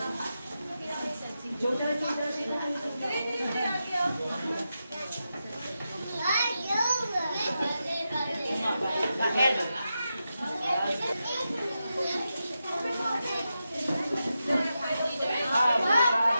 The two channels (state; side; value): inverted; both; correlation -0.89